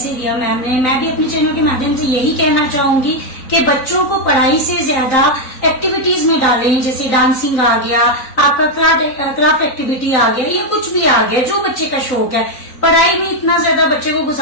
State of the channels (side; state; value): right; late; 3.9 ms